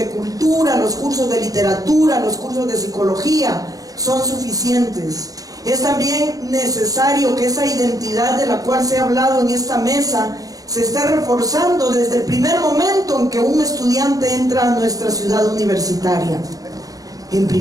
cultura, los cursos de literatura, los cursos de psicología son suficientes. Es también necesario que esa identidad de la cual se ha hablado en esta mesa se esté reforzando desde el primer momento en que un estudiante entra a nuestra ciudad universitaria. En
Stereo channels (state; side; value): late; left; 0.17 ms